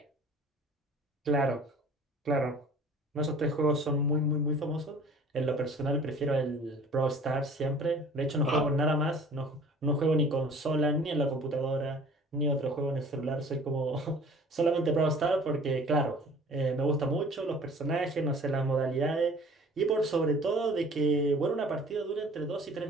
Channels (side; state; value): both; normal; correlation 0.49